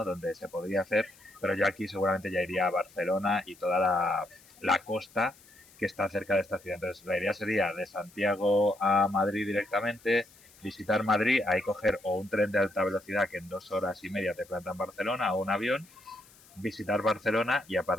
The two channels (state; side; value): noise; left; hiss, 26 dB below the sound